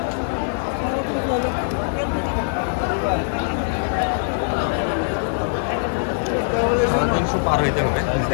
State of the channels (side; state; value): right; silent; digital silence